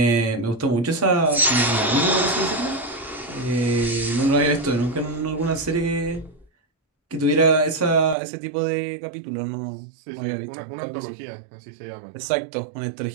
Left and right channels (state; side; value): drops out; left; at 8.2 s